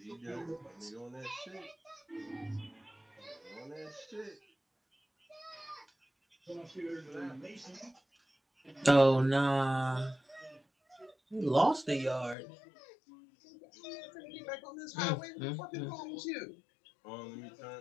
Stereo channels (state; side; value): drops out; right; at 12.4 s